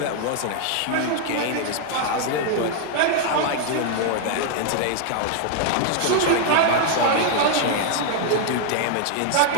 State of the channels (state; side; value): different; both; correlation 0.00